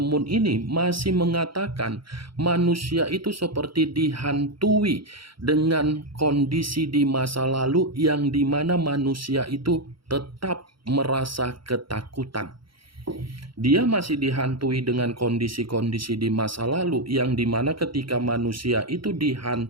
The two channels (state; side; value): late; left; 0.74 ms